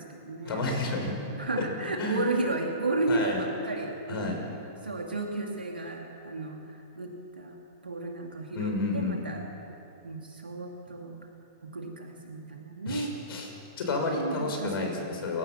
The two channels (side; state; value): both; inverted; correlation -0.37